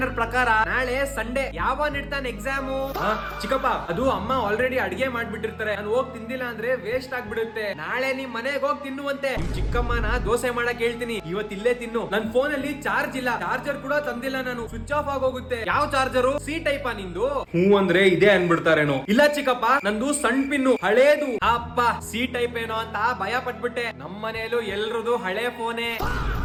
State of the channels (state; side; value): identical; both; correlation 1.00